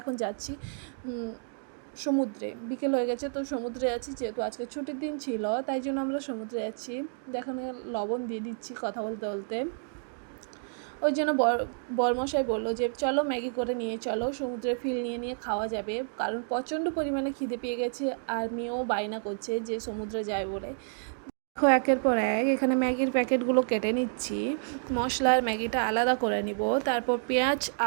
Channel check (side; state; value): left; silent; digital silence